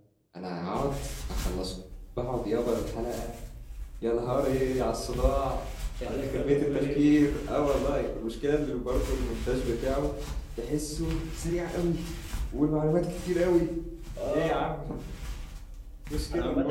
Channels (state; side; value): identical; both; correlation 1.00